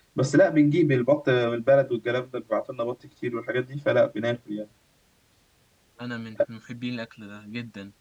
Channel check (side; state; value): both; identical; correlation 1.00